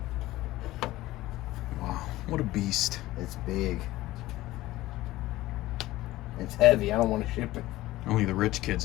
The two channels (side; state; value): right; quieter; 16.9 dB